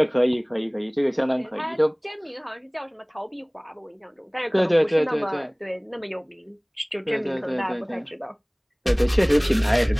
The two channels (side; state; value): both; identical; correlation 1.00